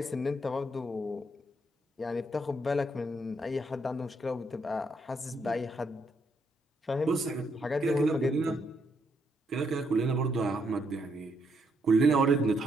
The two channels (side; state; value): both; normal; correlation 0.76